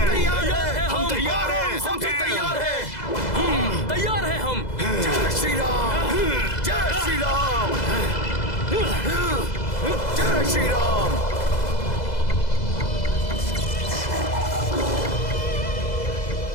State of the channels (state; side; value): late; right; 2.0 ms